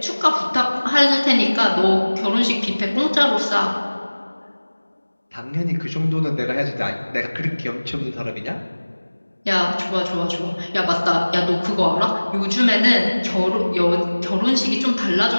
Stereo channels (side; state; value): both; inverted; correlation -1.00